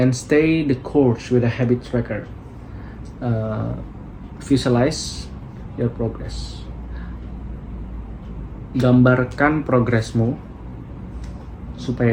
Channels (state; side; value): identical; both; correlation 1.00